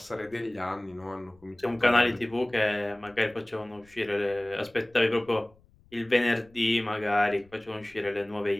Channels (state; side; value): noise; left; rumble, 29 dB below the sound